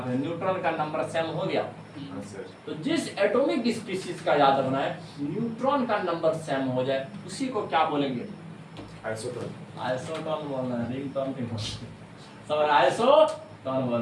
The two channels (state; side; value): identical; both; correlation 1.00